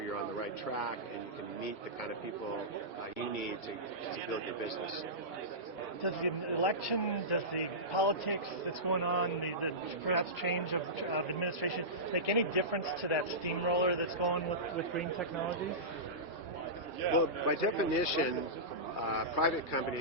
you're on the right track and you can meet the kind of people you need to build your business. Does the election, does the politics that's going on, the perhaps change of administration, make any difference to that steamroller that's going with green technologies? Well, by definition, private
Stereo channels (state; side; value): normal; both; correlation -0.17